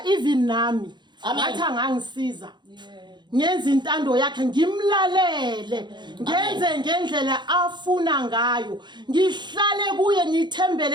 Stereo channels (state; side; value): late; left; 0.22 ms